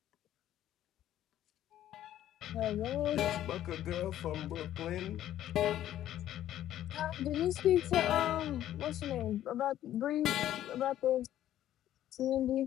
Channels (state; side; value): quieter; right; 12.3 dB